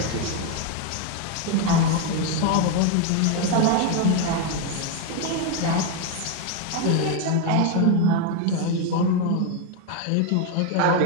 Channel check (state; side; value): different; both; correlation 0.02